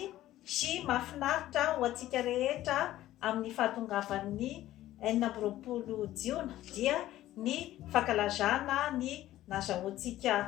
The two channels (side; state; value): right; quieter; 14.4 dB